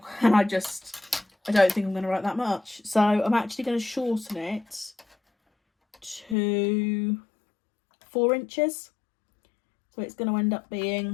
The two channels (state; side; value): drops out; right; at 6.4 s